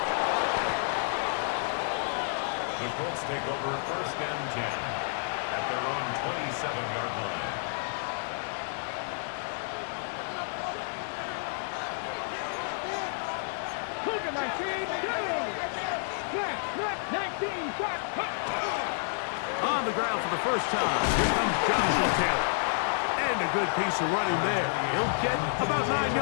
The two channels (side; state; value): right; silent; 58 dB below the other